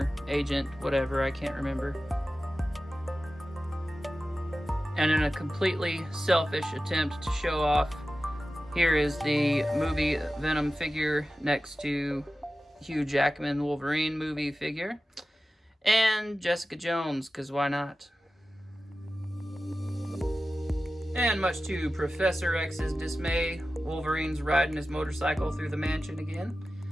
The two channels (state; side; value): normal; both; correlation 0.94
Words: Agent, whatever, I can't remember. And in a completely selfish attempt to show off, here is the movie Venom figure next to Hugh Jackman Wolverine movie figure, and Jessica Jones, because why not? And much to Professor X's dismay, Wolverine's riding his motorcycle through the mansion again.